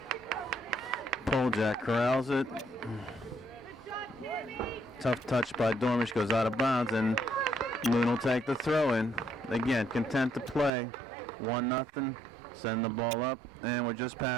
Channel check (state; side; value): drops out; left; at 10.7 s